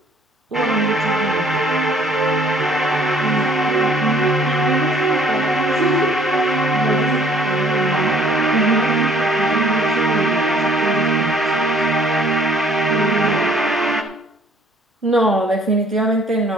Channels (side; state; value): both; normal; correlation 0.58